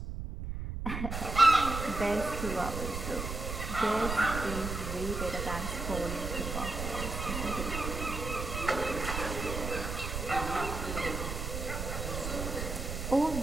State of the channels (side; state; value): right; noise; rumble, 4 dB below the sound